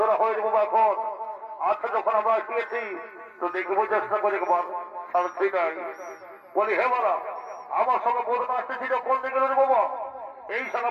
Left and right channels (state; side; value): identical; both; correlation 1.00